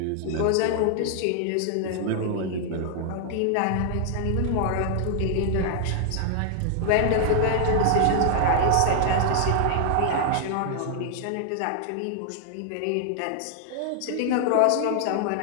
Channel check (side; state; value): both; different; correlation 0.00